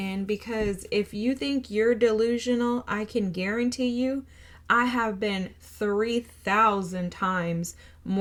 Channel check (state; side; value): identical; both; correlation 1.00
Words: because if you think you're delusional, I can guarantee you I have been 3,000 times